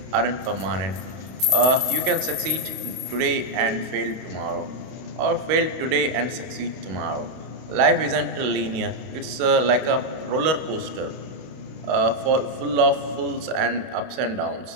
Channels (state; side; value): late; left; 32 ms